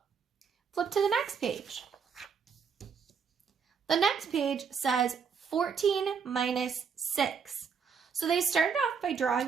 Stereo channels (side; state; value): left; quieter; 6.2 dB